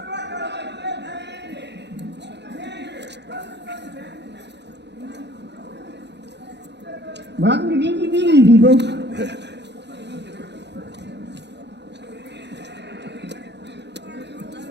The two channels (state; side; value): late; left; 0.50 ms